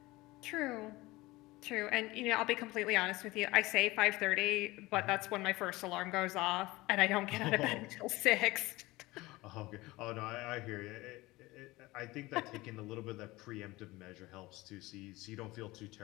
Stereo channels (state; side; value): quieter; right; 20.3 dB